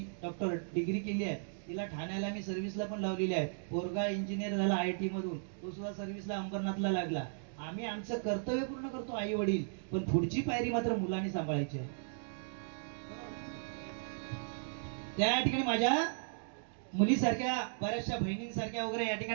डॉक्टर डिग्री केली आहे. तिला ठाण्याला मी सर्व्हिसला पण लावलेली आहे. पोरगा इंजिनियर झाला आयटी मधून, तो सुद्धा सर्व्हिसला अंबरनाथला लागला. आम्ही आमचं कर्तव्य पूर्ण करतो आई वडील, पण पुढची पायरी मात्र मुलांनी सांभाळायची आहे. त्या ठिकाणी माझ्या मुलीसारख्या बऱ्याचशा बहिणींसारख्या वगैरे या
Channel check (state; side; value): silent; left; digital silence